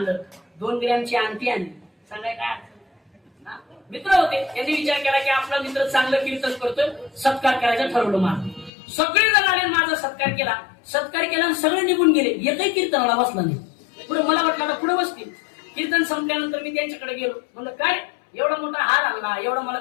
2 ग्रॅमची अंगठी आणली. सांगाय काय मित्र होते. त्यांनी विचार केला की आपला मित्र चांगलं कीर्तन करतोय, सत्कार करायचं ठरवलं. माझं सगळे जण आले, माझा सत्कार केला आणि सगळे निघून गेले. एकही कीर्तनाला बसला नाही. पुढे मला वाटलं आता पुढे बसतील. कीर्तन संपल्यानंतर मी त्यांच्याकडे गेलो. म्हणलं काय एवढा मोठा हार आणला, एवढा मला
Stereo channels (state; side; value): drops out; right; at 8.7 s